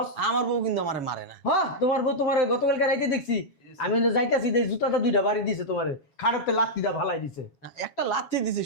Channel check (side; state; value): right; late; 7.2 ms